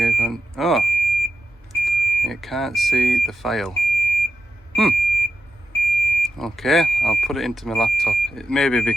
on. Oh, it can't see the file. Okay, I'll put it into my laptop. It may be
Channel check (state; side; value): normal; both; correlation 0.89